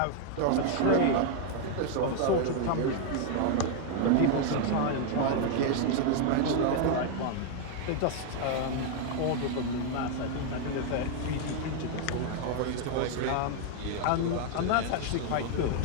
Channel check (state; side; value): different; both; correlation 0.00